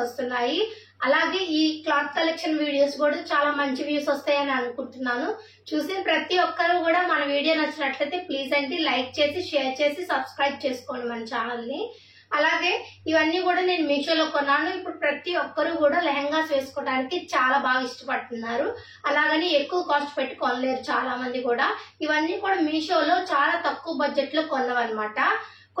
అలాగే ఈ క్లాత్ కలెక్షన్ వీడియోస్ కూడా చాలా మంచి వ్యూస్ వస్తాయని అనుకుంటున్నాను. చూసిన ప్రతి ఒక్కరు కూడా మన వీడియో నచ్చినట్లయితే ప్లీజ్ అండి లైక్ చేసి షేర్ చేసి సబ్స్క్రైబ్ చేసుకోండి మన ఛానల్ని. అలాగే ఇవన్నీ కూడా నేను మీషోలో కొన్నాను. ఇప్పుడు ప్రతి ఒక్కరు కూడా లెహంగాస్ వేసుకోవడానికి చాలా బాగా ఇష్టపడుతున్నారు. అలాగని ఎక్కువ కాస్ట్ పెట్టి కొనలేరు చాలా మంది కూడా. ఇవన్నీ కూడా మీషోలో చాలా తక్కువ బడ్జెట్ లో కొన్నవన్నమాట.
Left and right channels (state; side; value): identical; both; correlation 1.00